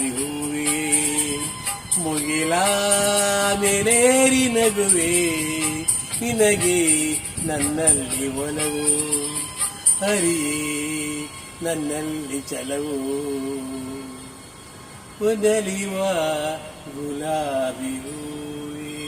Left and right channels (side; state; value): both; identical; correlation 1.00